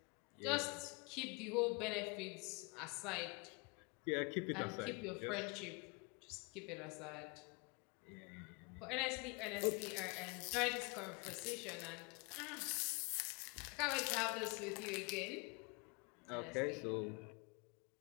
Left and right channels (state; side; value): quieter; right; 30.2 dB